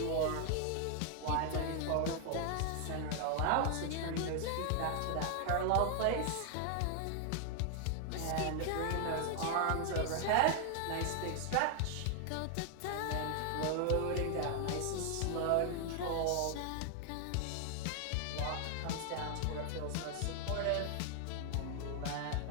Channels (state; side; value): different; both; correlation 0.00